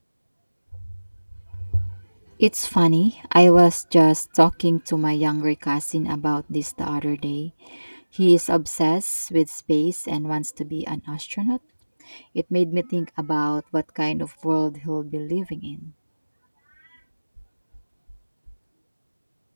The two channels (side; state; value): both; inverted; correlation -1.00